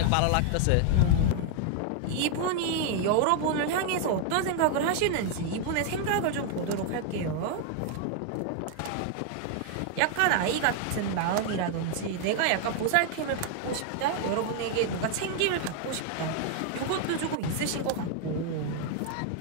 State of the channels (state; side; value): different; both; correlation 0.00